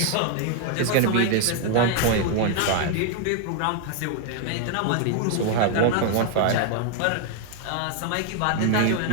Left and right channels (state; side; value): different; both; correlation 0.00